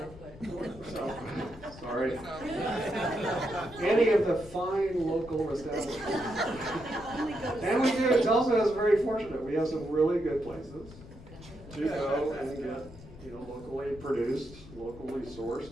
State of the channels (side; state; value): left; noise; rumble, 18 dB below the sound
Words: Sorry. Any of the fine local establishments. And we do, Tulsa is very fortunate. We have some really good places to go and get, you know, locally produced, locally sourced,